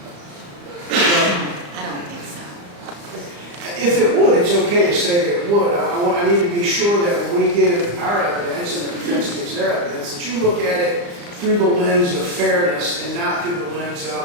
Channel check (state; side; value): late; left; 35 ms